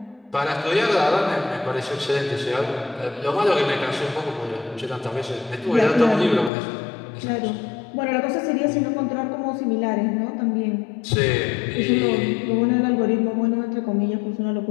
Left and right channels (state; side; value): drops out; right; at 6.5 s